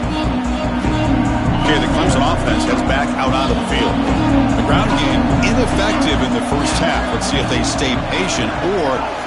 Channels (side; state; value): both; identical; correlation 1.00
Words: Okay, the Clemson offense heads back out onto the field. The ground game ineffective in the first half. Let's see if they stay patient or